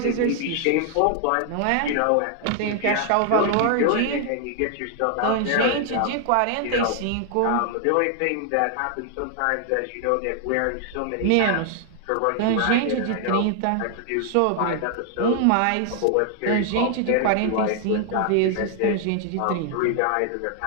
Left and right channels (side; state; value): both; different; correlation 0.00